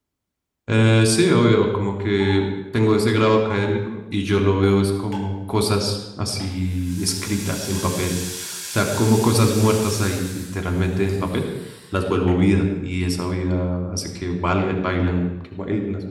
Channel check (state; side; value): identical; both; correlation 1.00